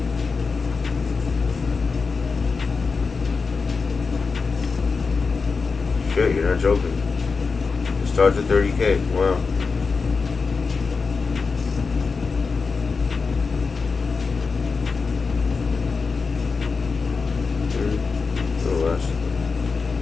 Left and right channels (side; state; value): right; quieter; 4.7 dB